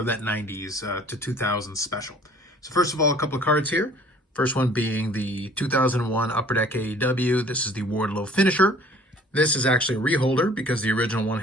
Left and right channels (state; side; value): normal; both; correlation 0.53